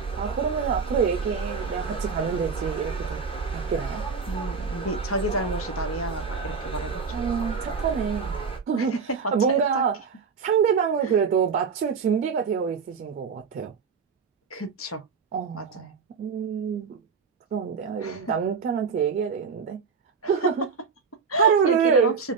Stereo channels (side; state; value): left; quieter; 5.5 dB